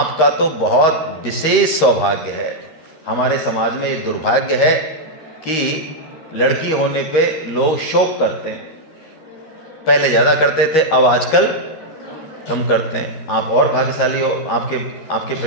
तो बहुत विशेष सौभाग्य है। हमारे समाज में ये दुर्भाग्य है कि लड़की होने पे लोग शोक करते हैं। पहले ज़्यादा करते थे, अब आजकल कम करते हैं। आप और भाग्यशाली हो, आपके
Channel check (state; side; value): late; right; 13 ms